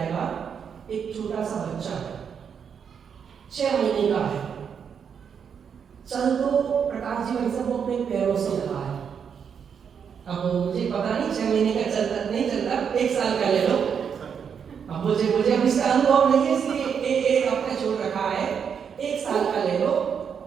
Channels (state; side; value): quieter; left; 7.2 dB